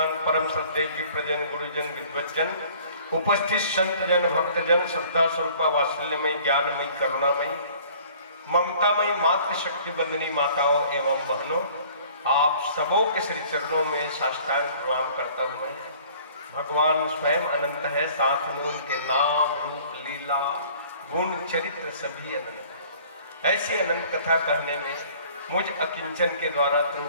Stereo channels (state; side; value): inverted; both; correlation -0.52